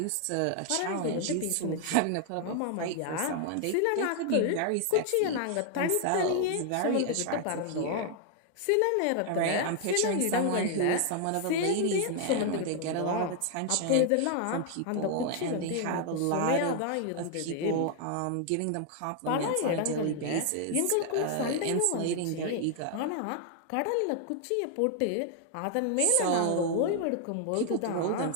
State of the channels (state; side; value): different; both; correlation 0.00